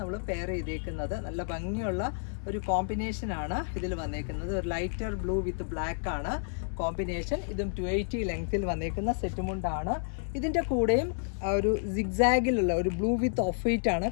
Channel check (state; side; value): silent; right; 58 dB below the other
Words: പെയർ ചെയ്തേക്കുന്നത്. നല്ല ഭംഗിയുള്ള ഒരു കോമ്പിനേഷനാണ് ഇതിൽ വന്നേക്കുന്നത്. ഒരു ലൈറ്റർ ബ്ലൂ വിത്ത് ബ്ലാക്ക് ആണ് കോമ്പിനേഷൻ. ഇതും 280 ലെങ്ത്തിൽ വന്നേക്കുന്ന സെറ്റ് മുണ്ടാണ്. ഇതിൻ്റെ കൂടെയും ഒരു സിഗ്സാഗിലുള്ള ഒരു ബ്ലൂ വിത്ത് ഓഫ് വൈറ്റ് ആണ്